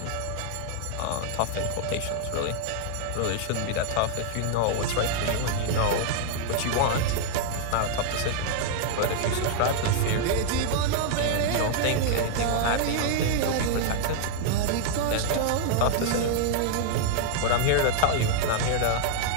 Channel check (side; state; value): both; different; correlation -0.01